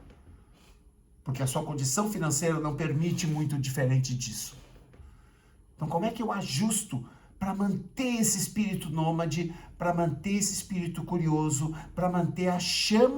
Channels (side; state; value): both; identical; correlation 1.00